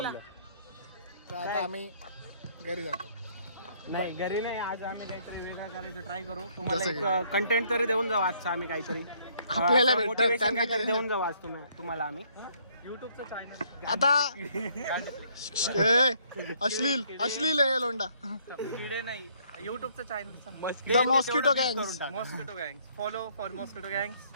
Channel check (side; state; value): both; inverted; correlation -0.66